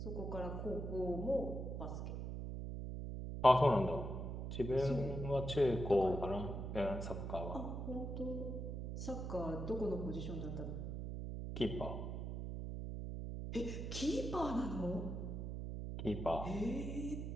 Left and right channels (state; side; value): noise; right; hum, 4 dB below the sound